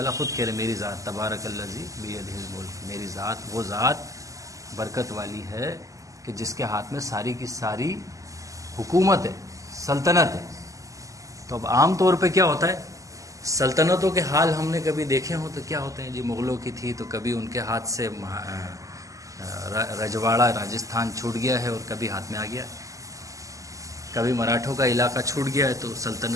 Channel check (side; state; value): left; late; 0.16 ms